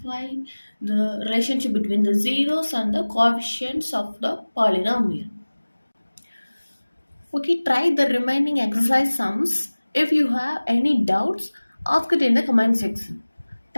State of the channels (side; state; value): both; inverted; correlation -1.00